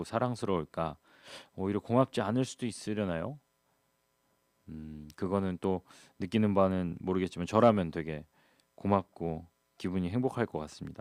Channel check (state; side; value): identical; both; correlation 1.00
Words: 사랑스러울까. 오히려 고맙지 않을 수도 있으려나요? 그거는 또 느끼는 바는 모르겠지만 저라면 되게 고맙고 기분이 행복할 것